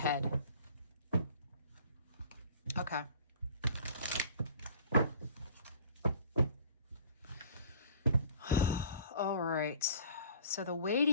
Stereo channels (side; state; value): both; inverted; correlation -0.49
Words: Okay. All right. So the